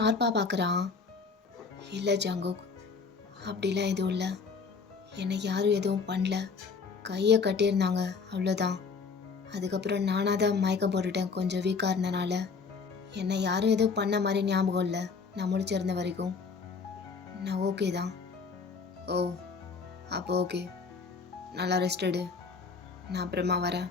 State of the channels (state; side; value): quieter; right; 5.1 dB